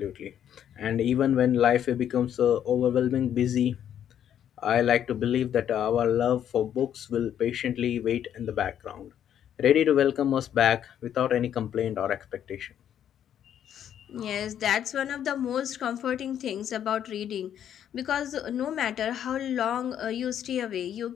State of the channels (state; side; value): quieter; right; 9.8 dB